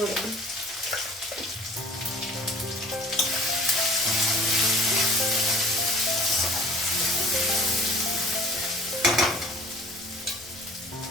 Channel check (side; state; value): both; normal; correlation 0.48